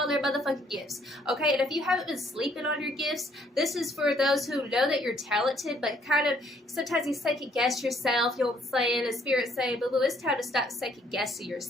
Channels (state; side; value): normal; both; correlation 0.65